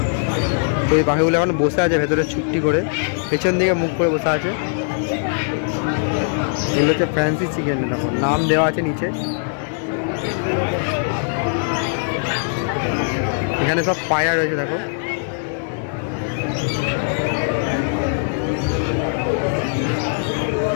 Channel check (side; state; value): right; silent; digital silence